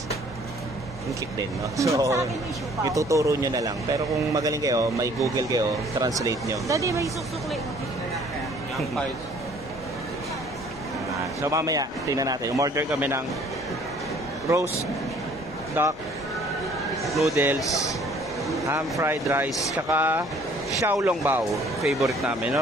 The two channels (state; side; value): normal; both; correlation 0.56